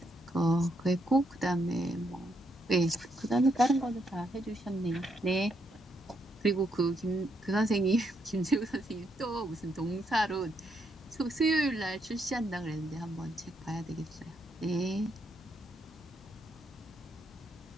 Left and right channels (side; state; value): both; normal; correlation 0.77